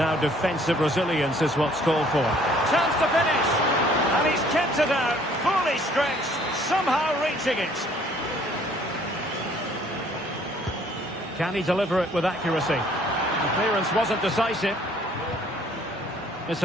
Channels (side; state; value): both; normal; correlation 0.59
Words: defensive resilience is what's called for. Chance to finish. And he's kept it out. Fully stretched. Somehow reaching it. Can he deliver it with accuracy? The clearance wasn't decisive. It's